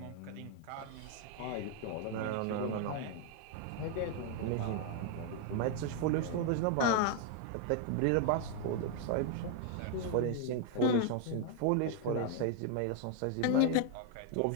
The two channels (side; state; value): both; different; correlation 0.00